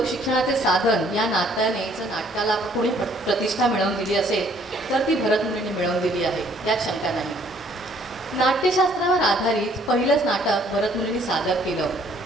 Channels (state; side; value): normal; both; correlation 0.61